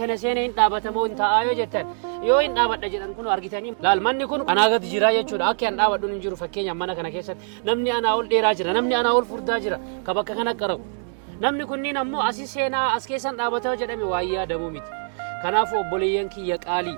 kana seenee hin dhaabatamoo hin taa'aa yoo jettan yoo hin dhaabadha jedhan kun argitanii laal manni kun anaa gadi jira jechuudha akka hin dhaabadhuun hin jiru fakkeenyaaf mana kana keessatti namni anaa ol dheeraa jira namni anaa ol furdaa jira ka bakka kana qarabu namni kunniin ammoo asii seenaa as keessan dhaabataa jedhame waayyaa yaadamuu miti kanaafuu obboleeyyan kiyya qaalii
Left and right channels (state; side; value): silent; left; digital silence